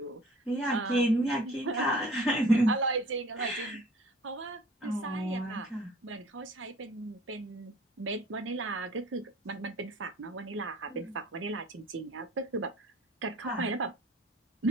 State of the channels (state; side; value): normal; both; correlation 0.49